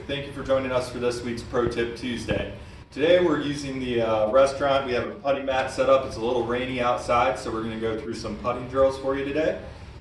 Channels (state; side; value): identical; both; correlation 1.00